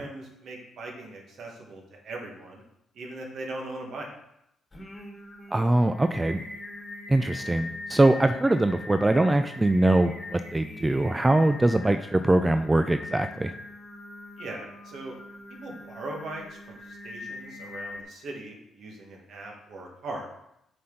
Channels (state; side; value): normal; both; correlation 0.97